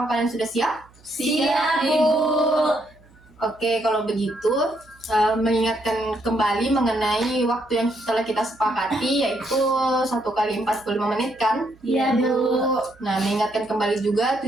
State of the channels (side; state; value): right; noise; hum, 28 dB below the sound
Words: kalian sudah siap? Siap, Ibu. Oke, kalau begitu mengingatkan kembali mengenai waktu yang telah kita sepakati, yaitu 1 kali 45 menit kan? Iya, Bu. Nah, mengingatkan kembali juga